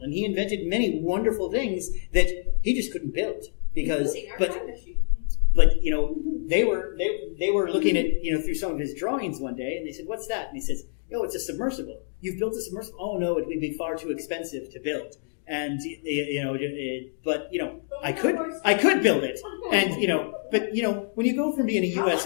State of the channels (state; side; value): silent; right; digital silence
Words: and he invented many wonderful things that he just couldn't build because, Including our time machine. but they were looking at through some of his drawings one day, and they said, "What's that?" And he says, "Oh, it's a submersible. You've built a submersible? Oh no, it would be far too expensive to build." And but I could build it, and but when you go from being a